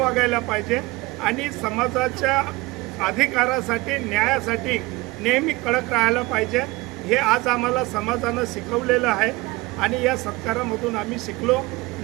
पाहिजे आणि समाजाच्या अधिकारासाठी, न्यायासाठी नेहमी कडक राहायला पाहिजे. हे आज आम्हाला समाजानं शिकवलेलं आहे आणि या सत्कारामधून आम्ही शिकलो.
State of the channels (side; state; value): left; quieter; 21.8 dB